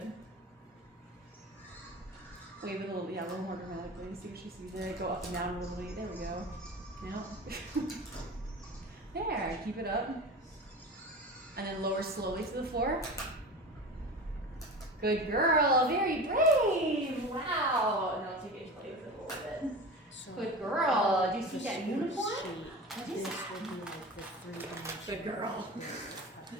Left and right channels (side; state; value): both; normal; correlation 0.31